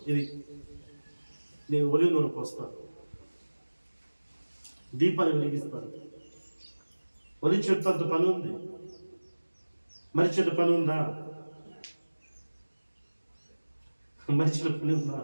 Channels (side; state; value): both; inverted; correlation -1.00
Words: ఇది. నేను ఒలివ నూనె పోస్తాను, దీపాన్ని వెలిగిస్తాను. ఒలివ చెట్టు అంత పని ఉంది. మరి చెట్టు పని ఉందా? మనిషిలో పని ఉందా?